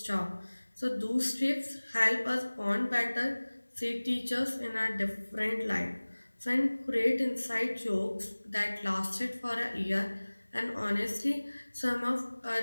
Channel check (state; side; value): inverted; both; correlation -1.00